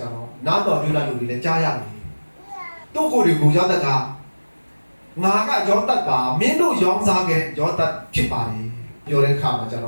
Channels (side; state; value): both; inverted; correlation -1.00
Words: ျတော့နားတော်ပြုလာလူတွေလည်းကြားရတယ်သူ့ကိုယ်တွေကိုယောသက်ကငါကယောသက်ပါမင်းတို့ရောင်းစားခဲ့ယောသက်ဖြစ်ပါလေပြောတဲ့ခါမှာကျတေ